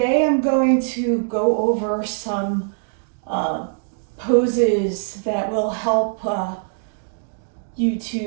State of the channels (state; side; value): silent; left; digital silence